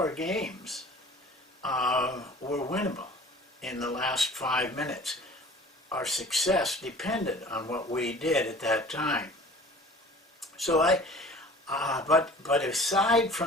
games were winnable in the last 5 minutes. Our success depended on what we did at that time. So but aside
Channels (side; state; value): both; normal; correlation 0.45